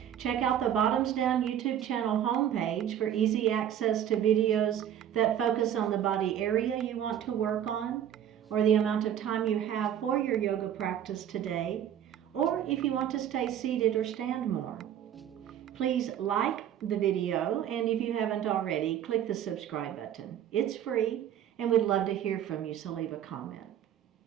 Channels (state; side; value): quieter; left; 10.2 dB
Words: Check out the Bottoms Down YouTube channel homepage for easy access to videos that focus on the body area you want to work on, or the amount of time you have for your yoga practice today, or if you want to stay seated or stand more. Please like the video, and if you haven't already, click the subscribe button. It's free, and we'd love to hear from you, so leave a comment.